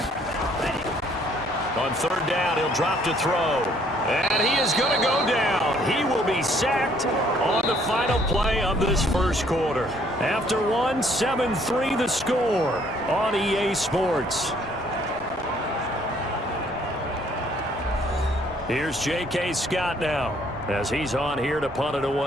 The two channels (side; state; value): both; normal; correlation 0.63